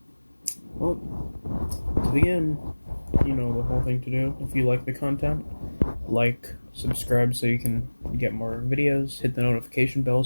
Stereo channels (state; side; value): inverted; both; correlation -1.00